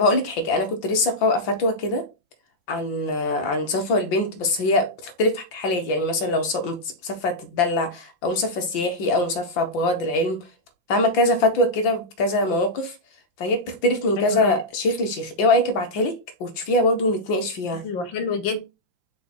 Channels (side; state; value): right; late; 5.8 ms